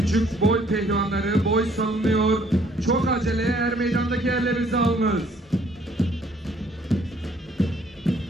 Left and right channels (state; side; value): normal; both; correlation 0.62